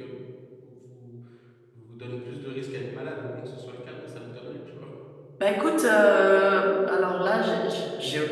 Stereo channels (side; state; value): both; identical; correlation 1.00